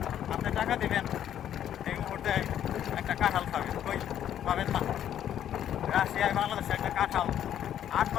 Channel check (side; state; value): right; quieter; 10.5 dB